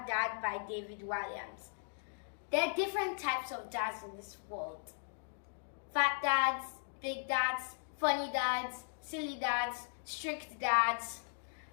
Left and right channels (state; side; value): silent; right; digital silence